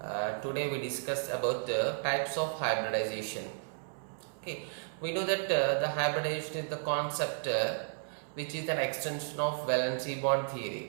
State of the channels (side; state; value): left; silent; 56 dB below the other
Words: Today we discuss about the types of hybridization. Okay, we know that the hybridization is the concept which is an extension of valency bond